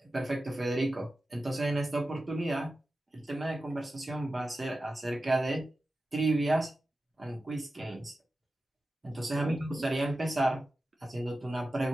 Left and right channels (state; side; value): normal; both; correlation 0.93